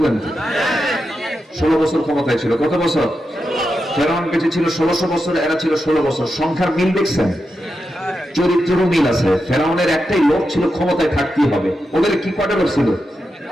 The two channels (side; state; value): both; normal; correlation 0.88